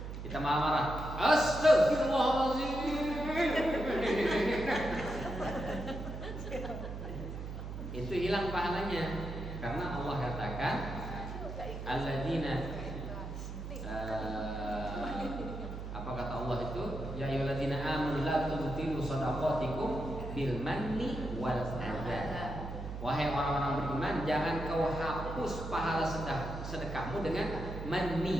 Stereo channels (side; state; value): right; noise; hum, 7 dB below the sound